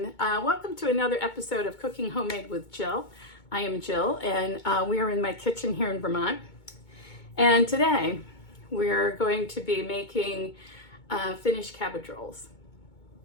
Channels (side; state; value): right; late; 2.2 ms